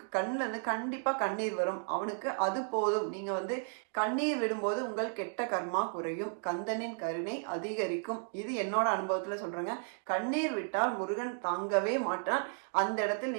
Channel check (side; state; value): left; silent; 55 dB below the other